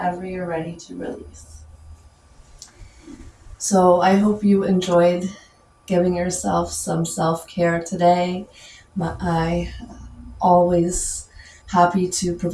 you're ready to release. So I hope you enjoyed giving yourself some self-care today. I always happy to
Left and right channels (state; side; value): identical; both; correlation 1.00